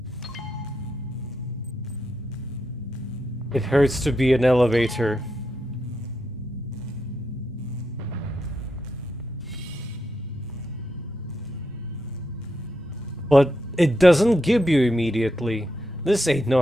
It hurts to be an elevator. But it doesn't give you immediately. This ain't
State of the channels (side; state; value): both; normal; correlation 0.83